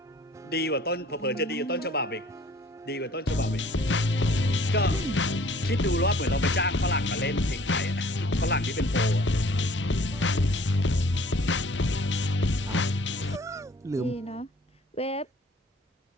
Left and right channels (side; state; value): both; normal; correlation 0.54